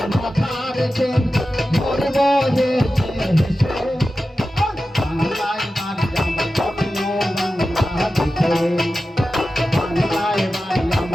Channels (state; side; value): normal; both; correlation 0.93